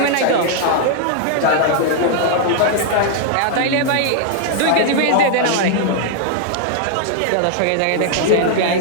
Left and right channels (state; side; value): different; both; correlation -0.01